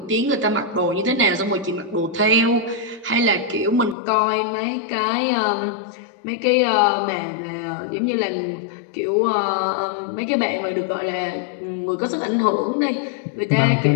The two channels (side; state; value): right; drops out; at 4.0 s